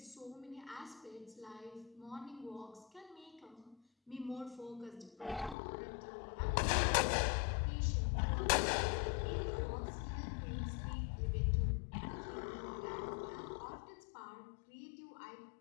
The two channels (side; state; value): right; drops out; at 5.6 s